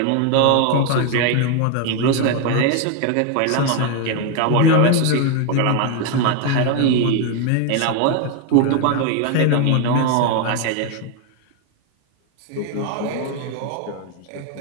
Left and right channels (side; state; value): both; different; correlation 0.01